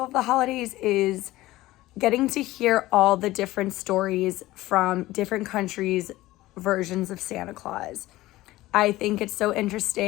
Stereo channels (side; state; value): right; quieter; 17.3 dB